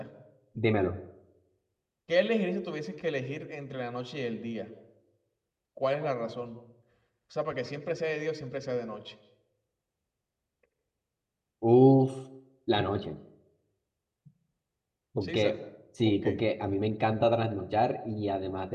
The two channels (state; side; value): identical; both; correlation 1.00